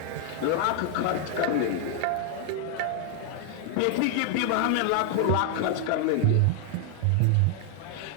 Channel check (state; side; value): different; both; correlation 0.00